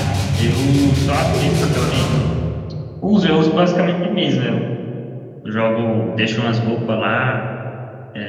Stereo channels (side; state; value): both; identical; correlation 1.00